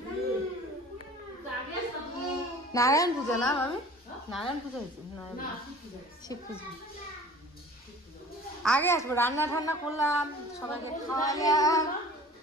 নারায়ণ পূজা না মামি, নারায়ণ পূজা হয়েছে, শিব পুজো। আগে আসবো, রান্না ঠান্না করলাম, সবাইকে খাওয়াইলাম,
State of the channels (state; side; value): normal; both; correlation 0.45